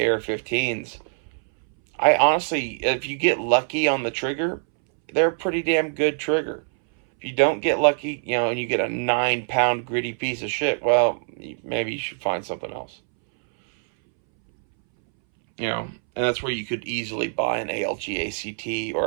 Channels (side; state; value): left; silent; 63 dB below the other